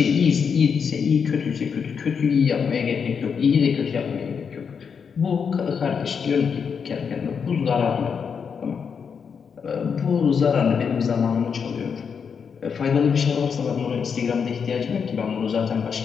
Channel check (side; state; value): right; quieter; 6.5 dB